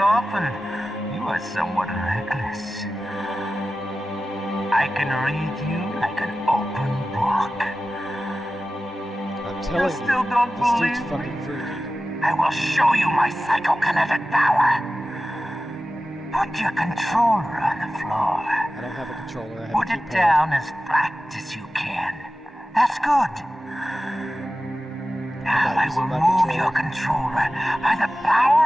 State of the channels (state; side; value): normal; both; correlation 0.95